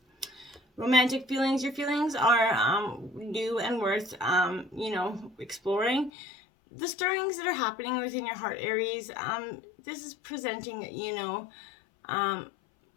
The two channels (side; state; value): right; drops out; at 6.1 s